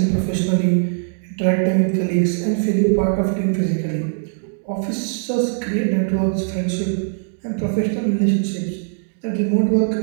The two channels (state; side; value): silent; left; digital silence